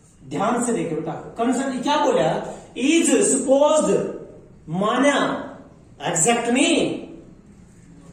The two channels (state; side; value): identical; both; correlation 1.00